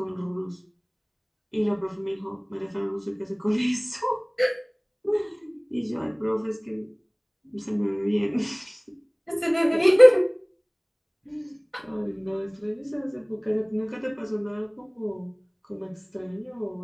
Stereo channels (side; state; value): both; identical; correlation 1.00